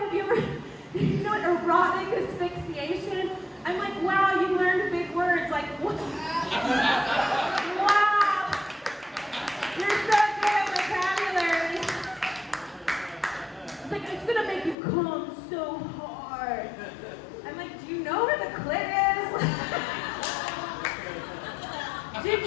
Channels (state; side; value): drops out; right; at 14.8 s